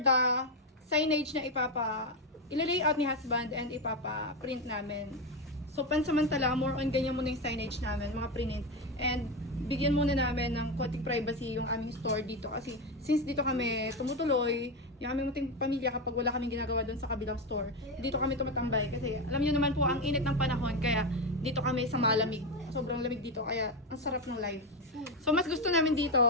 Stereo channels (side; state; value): both; normal; correlation 0.12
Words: signage na ila-layout ni husband and ipapa-print namin. So pansamantala, more on ganyan muna yung signage namin, mga print. And bigyan muna namin ng konting privacy yung aming store dito kasi since dito kami tumutuloy, yung aming munting pamilya kapag wala kaming ginagawa doon sa kabilang store, dito kami tumatambay kasi alam niyo naman po ang init ng panahon kaya dito kami sa malamig. Sobrang lamig dito kaya ang sarap ng life. So mas gusto namin